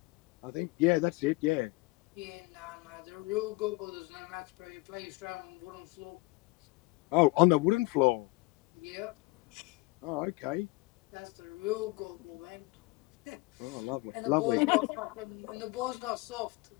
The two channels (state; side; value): quieter; right; 23.6 dB